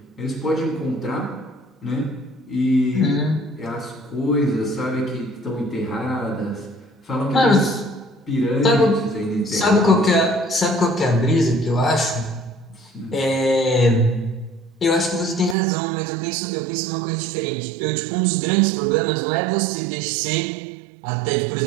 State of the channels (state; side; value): drops out; left; at 15.6 s